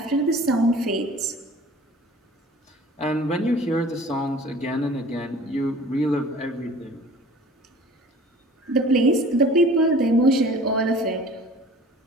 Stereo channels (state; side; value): normal; both; correlation 0.46